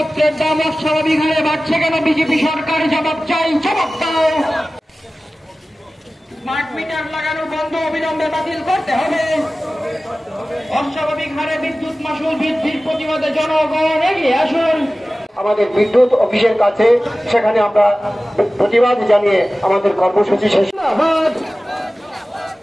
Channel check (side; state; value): both; normal; correlation 0.96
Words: দাম অস্বাভাবিক হারে বাড়ছে কেন? বিজেপি সরকার জবাব চাই, জবাব দাও। স্মার্ট মিটার লাগানো বন্ধ অবিলম্বে বাতিল করতে হবে। অস্বাভাবিক হারে বিদ্যুৎ মাশুল বৃদ্ধির প্রতিবাদে জনগণ এগিয়ে আসুন। আমাদের বিদ্যুৎ অফিসের কাছে সেখানে আমরা প্রতিবাদ জানিয়ে আমাদের কর্মসূচি শেষ।